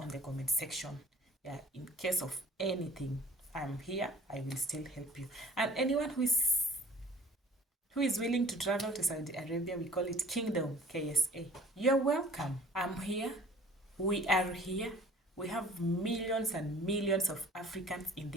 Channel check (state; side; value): normal; both; correlation 0.50